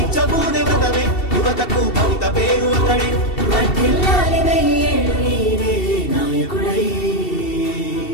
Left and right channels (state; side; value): late; right; 2.7 ms